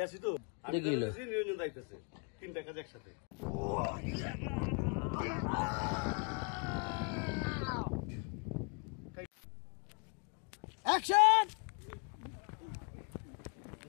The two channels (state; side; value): quieter; right; 36.6 dB